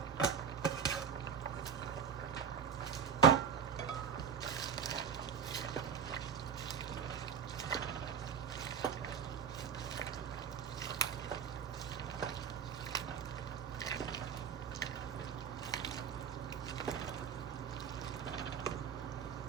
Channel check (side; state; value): left; quieter; 7.3 dB